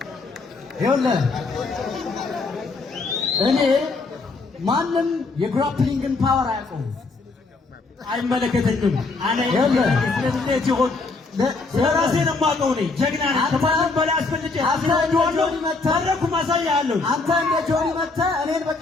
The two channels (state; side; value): quieter; right; 3.8 dB